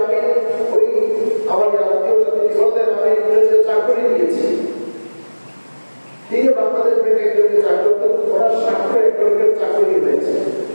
আমি ওই আমার আত্মীয়তা তিনি বললেন আমি ইংরেজিতে চাকরি নিয়েছি। তিনি বাংলাদেশ ব্যাংকে একজনকে চাকরি করতেন, ওনার স্বাক্ষর একজনকে চাকরি হয়েছে।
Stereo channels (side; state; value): both; inverted; correlation -1.00